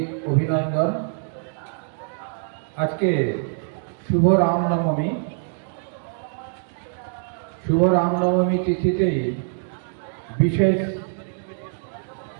অভিনন্দন। আজকে শুভ রামনবমী। শুভ রামনবমী তিথিতেই বিশেষ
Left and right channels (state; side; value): silent; left; digital silence